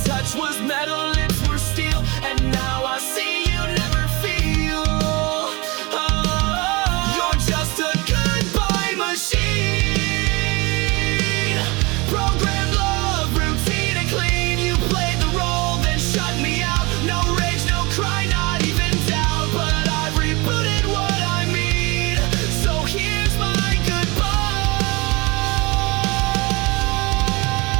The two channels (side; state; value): left; quieter; 25.4 dB